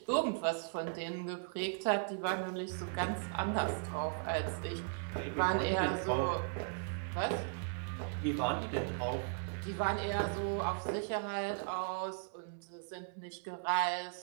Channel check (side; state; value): left; silent; 53 dB below the other